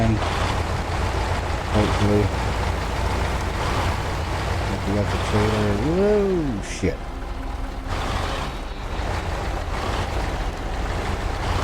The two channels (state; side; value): identical; both; correlation 1.00